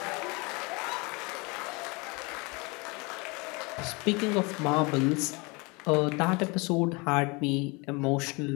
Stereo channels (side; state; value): right; quieter; 27.8 dB